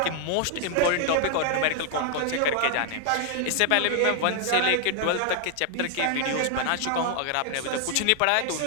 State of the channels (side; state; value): both; different; correlation 0.00